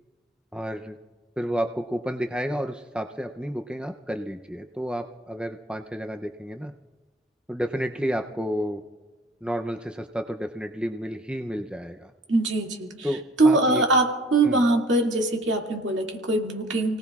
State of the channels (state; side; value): normal; both; correlation 0.55